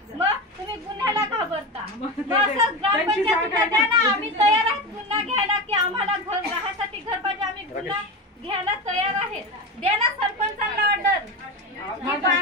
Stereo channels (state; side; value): normal; both; correlation 0.21